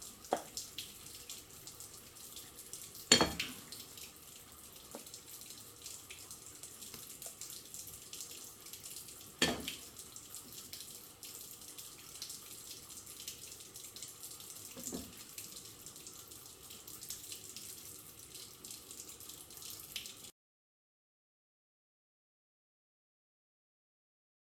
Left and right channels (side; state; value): both; identical; correlation 1.00